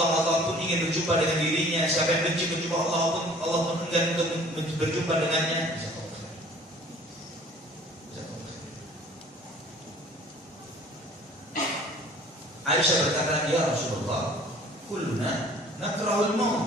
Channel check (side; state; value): both; normal; correlation 0.51